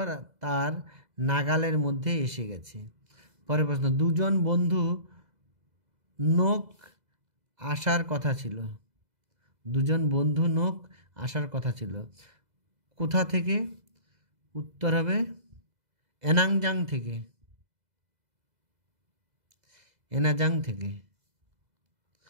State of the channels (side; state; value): left; late; 2.0 ms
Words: তার নাগালের মধ্যে এসে গেছে। পরের প্রশ্ন, দুজন বন্ধু নৌক আসার কথা ছিল, দুজন বন্ধু নৌক আসার কথা ছিল, কোথা থেকে? উত্তর হবে এনাজাং থেকে, এনাজাং থেকে,